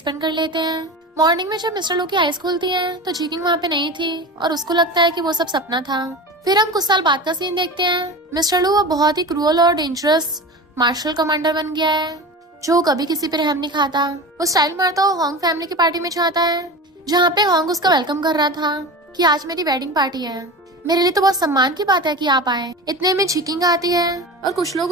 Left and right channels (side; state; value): both; normal; correlation 0.30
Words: कर लेते हैं। मॉर्निंग में जब मिस्टर लो की आईज खुलती है तो जीकिंग वहाँ पे नहीं थी और उसको लगता है कि वो सब सपना था। फिर हम कुछ साल बाद का सीन देखते हैं। मिस्टर लो वो बहुत ही क्रूअल और डेंजरस मार्शल कमांडर बन गया है, जो कभी किसी पे रहम नहीं खाता। वो स्टाइल मारता हुआ होंग फैमिली की पार्टी में जाता है, जहाँ पे होंग उसका वेलकम कर रहा था कि आज मेरी वेडिंग पार्टी है, मेरे लिए तो बहुत सम्मान की बात है कि आप आए। इतने में झिकिंग आती है और कुछ लोग